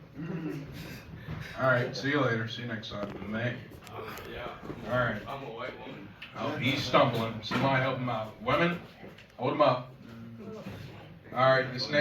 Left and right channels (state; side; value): identical; both; correlation 1.00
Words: All right. See you later. See you next time. May. Yeah. All right. I'm a white woman. Oh, he's stumbling. Somebody help him out. Women, hold him up. All right. This